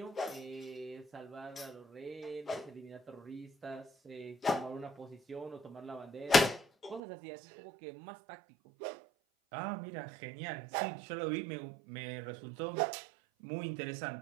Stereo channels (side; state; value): left; drops out; at 7.0 s